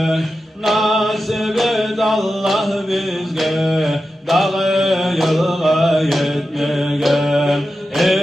nasip et Allah bizge, dağı yılga yetmeye.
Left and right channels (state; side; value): normal; both; correlation 0.91